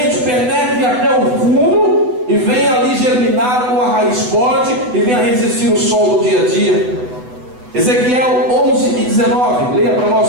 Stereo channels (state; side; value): late; left; 8.0 ms